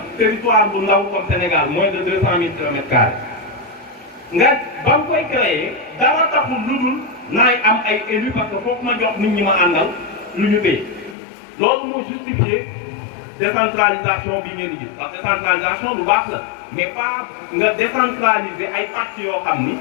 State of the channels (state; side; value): drops out; right; at 11.2 s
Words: territoire bu ndaw comme Sénégal moins de 200 000 kilomètres carrés nga ba nga koy créer dara taxul lu dul naay am ay élus parce que foofu ma jox nit ñi ma àndal lu ñu téye loolu moo justifié décentralisation bi ngeen di gis parce que décentralisation lu baax la mais pas nga décentraliser ay pàcc yoo xam ni